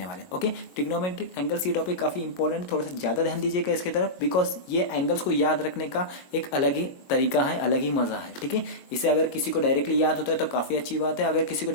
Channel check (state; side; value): late; right; 22 ms